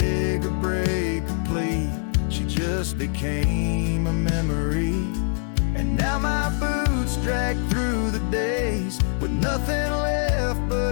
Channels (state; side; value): silent; right; 63 dB below the other